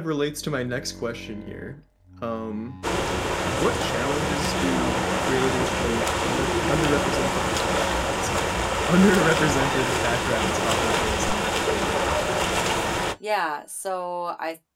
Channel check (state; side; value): identical; both; correlation 1.00